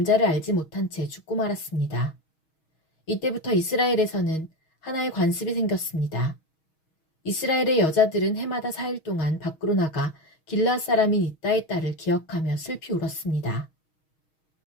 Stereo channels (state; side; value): late; right; 6.3 ms